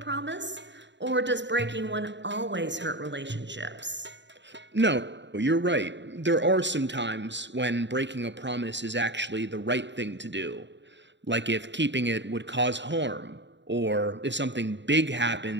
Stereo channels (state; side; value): late; left; 0.52 ms